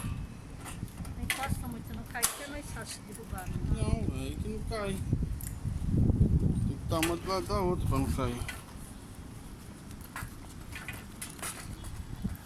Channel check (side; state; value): both; identical; correlation 1.00